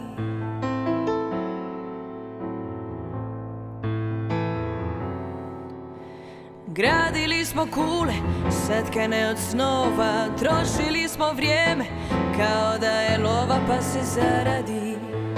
Gradili smo kule, satkane od snova, trošili smo vrijeme kao da je lova pa se zaradi.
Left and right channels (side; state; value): both; identical; correlation 1.00